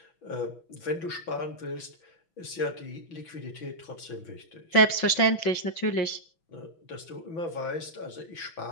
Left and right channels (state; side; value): late; right; 6.0 ms